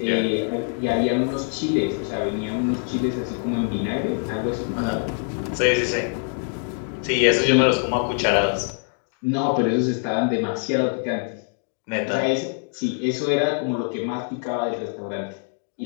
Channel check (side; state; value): right; silent; 56 dB below the other